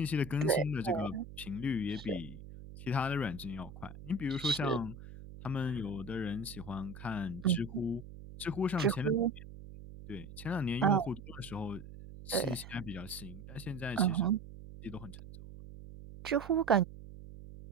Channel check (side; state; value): right; noise; hum, 14 dB below the sound